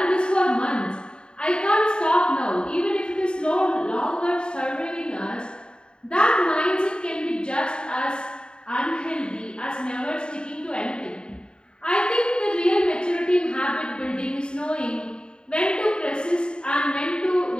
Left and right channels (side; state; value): right; late; 0.050 ms